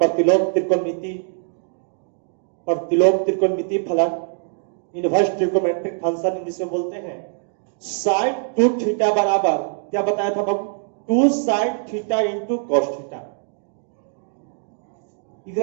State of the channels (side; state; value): left; silent; digital silence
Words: त्रिकोणमिति फलन, इनवर्स ट्रिकोमेट्रिक फंक्शन इंग्लिश में बोलते हैं। साइन 2 थीटा बराबर क्या बताया था बाबू? 2 sine theta into cos theta.